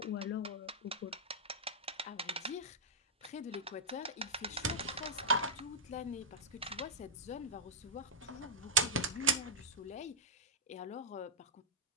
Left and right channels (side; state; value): both; normal; correlation -0.10